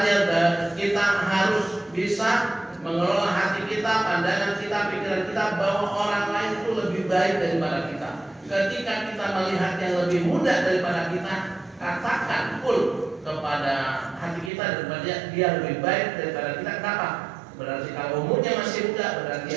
kita harus bisa mengelola hati kita, pandangan kita, pikiran kita bahwa orang lain itu lebih baik daripada kita. Ketika kita melihat yang lebih mudah daripada kita, katakan full kepada hati kita daripada dia lebih baik daripada kita. Kenapa? Berarti kalau umurnya masih muda, berarti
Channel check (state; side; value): drops out; left; at 14.5 s